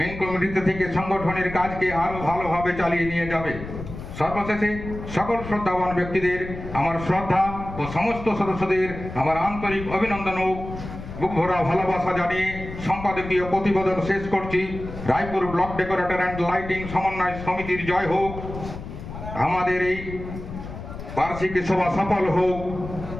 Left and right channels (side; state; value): left; noise; rumble, 10 dB below the sound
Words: কমিটিতে থেকে সংগঠনের কাজকে আরো ভালোভাবে চালিয়ে নিয়ে যাবে। সর্বশেষে সকল শ্রদ্ধাবান ব্যক্তিদের আমার শ্রদ্ধা ও সমস্ত সদস্যদের আমার আন্তরিক অভিনন্দন ও বুক ভরা ভালোবাসা জানিয়ে সম্পাদকীয় প্রতিবেদন শেষ করছি। Raipur block decorator and lighting সমন্বয় সমিতির জয় হোক। আমাদের এই বার্ষিক সভা সফল হোক।